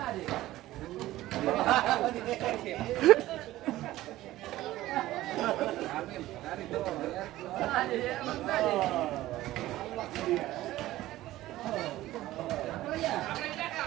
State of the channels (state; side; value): quieter; left; 15.8 dB